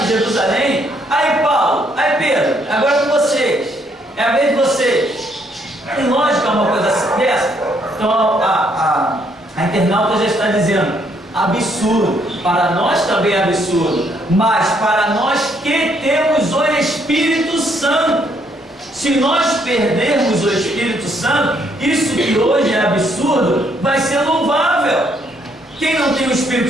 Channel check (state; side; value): normal; both; correlation 0.70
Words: Jerusalém. Aí Paulo, aí Pedro, agora é com vocês. É a vez de vocês. Tem lógica uma coisa dessa? Então a internauta já está dizendo: absurdo. Para nós também é absurdo. mas para nós que temos o Espírito Santo. Se nós perdermos o Espírito Santo, isso que hoje é absurdo, vai ser louvável. Quem não tem o